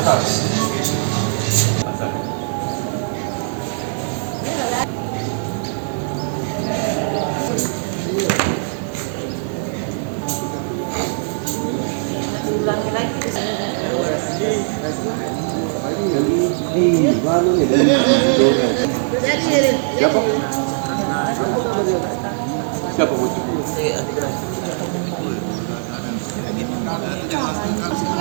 Siapa? Siapa bu? Masuk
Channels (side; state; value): left; silent; digital silence